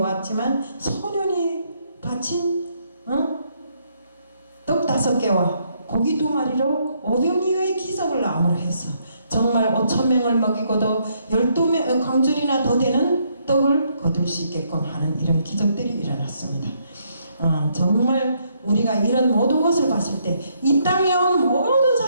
소년이 바친 떡 5개와 고기 2마리로 5병이의 기적을 암으로 해서 정말 5,000명을 먹이고도 12명 광줄이나 더 되는 떡을 거둘 수 있게끔 하는 이런 기적들이 일어났습니다. 정말 우리가 이런 모든 것을 봤을 때 이 땅에 온 모든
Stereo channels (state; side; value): inverted; both; correlation -0.73